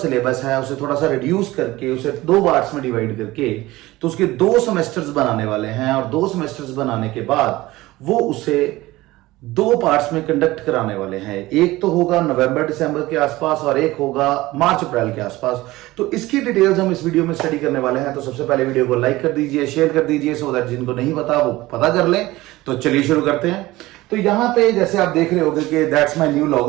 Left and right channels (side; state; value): left; quieter; 18.5 dB